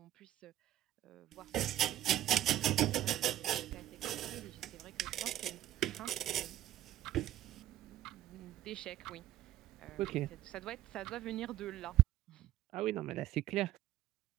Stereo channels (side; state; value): left; quieter; 13.2 dB